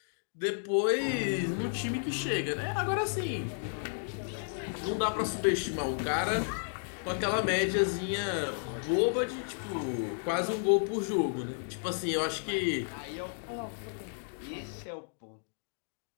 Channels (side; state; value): right; silent; digital silence